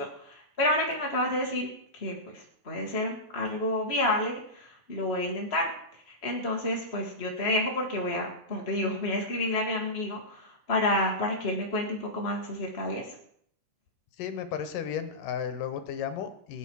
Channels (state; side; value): normal; both; correlation -0.14